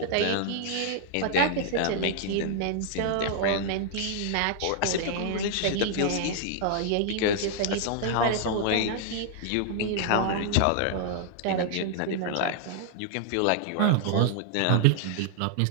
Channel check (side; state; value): both; different; correlation -0.01